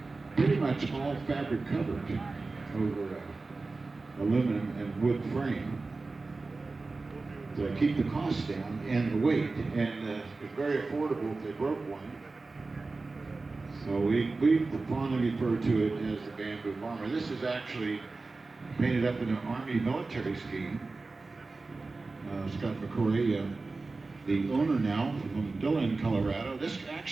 pretty much all fabric covered over aluminum and wood frame to keep the cost down and the weight, and it's very affordable if they broke one. So we fondly refer to it as the Bamboo Bomber. This is actually painted up in an Army military scheme. Scott McCoy, the owner now from Dillon, Colorado. This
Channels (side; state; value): left; quieter; 3.7 dB